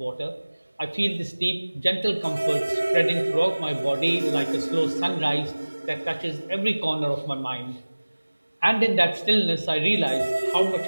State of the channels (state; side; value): inverted; both; correlation -1.00